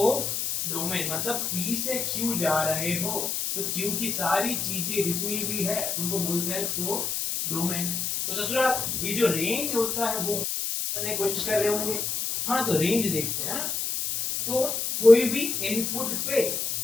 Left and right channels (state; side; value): noise; left; hiss, 1 dB below the sound